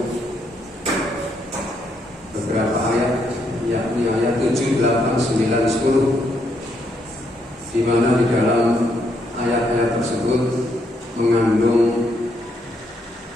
beberapa ayat yakni ayat 7, 8, 9, 10, di mana di dalam ayat-ayat tersebut mengandung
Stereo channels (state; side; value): normal; both; correlation 0.75